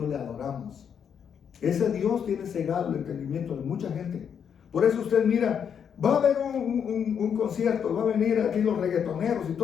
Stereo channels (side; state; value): right; quieter; 7.7 dB